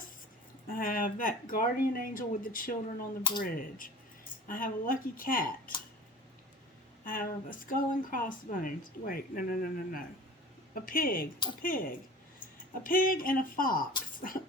I have that guardian angel with the children on the bridge. I have a lucky cat. I have a skull and crossbones. Wait, no. A pig. A pig and a fox.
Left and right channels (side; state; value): both; normal; correlation 0.39